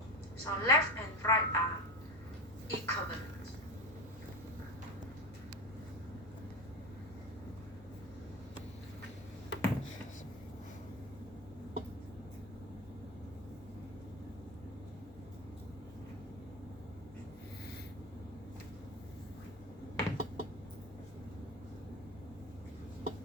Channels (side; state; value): both; normal; correlation 0.23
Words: So left and right are equivalent.